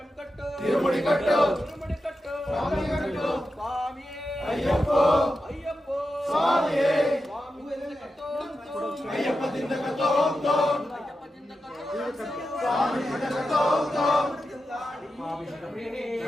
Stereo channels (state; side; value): normal; both; correlation 0.90